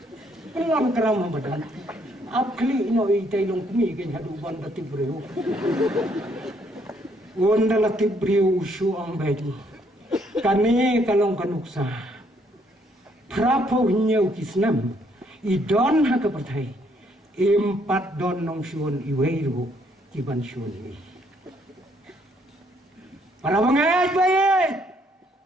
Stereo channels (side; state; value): both; normal; correlation 0.69